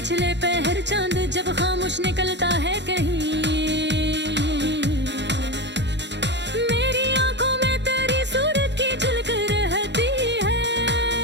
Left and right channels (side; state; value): left; late; 0.51 ms